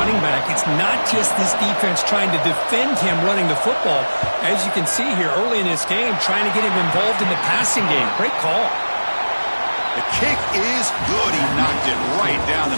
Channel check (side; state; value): both; inverted; correlation -1.00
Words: back. It's not just this defense trying to defend him running the football. As you can see here early in this game, trying to get him involved in the passing game. Great call. The kick is good. He knocked it right down the